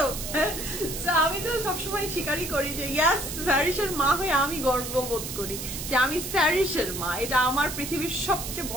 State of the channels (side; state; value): right; noise; hiss, 7 dB below the sound